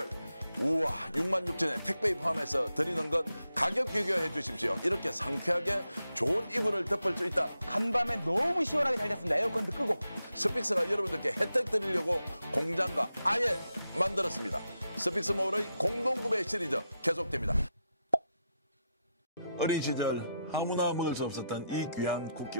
우와 66,000원에 택배에 포함해서 드리는 것 가격 비교해 주십시오. 이렇게 상쾌하게 좋은 이불을 덮을 수 있다. 간밤에 너무 시원하게 잘 잤습니다. 에어컨도 끄고. 스픽스가 여러분들께 혜택 드리려고 공장과 아예 만들었습니다. 스픽스몰의 공동구매 시리즈 계속됩니다. 어린 시절 아무나 먹을 수 없었던 이 귀한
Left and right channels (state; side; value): inverted; both; correlation -0.85